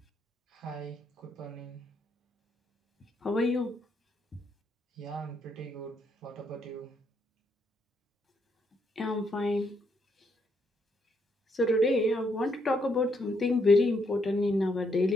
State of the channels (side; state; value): both; normal; correlation 0.75